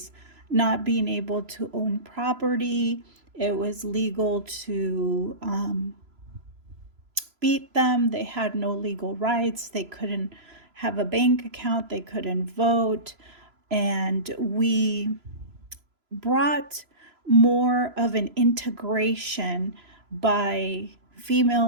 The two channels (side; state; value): left; late; 3.0 ms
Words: not being able to own property. It was legal to beat them. They had no legal rights. They couldn't have a bank account. They couldn't vote. And we brought more of an integration by